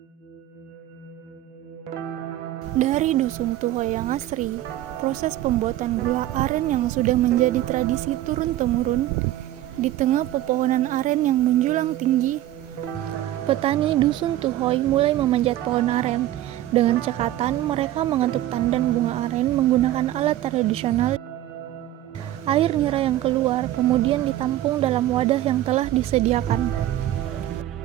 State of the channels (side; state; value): left; quieter; 13.9 dB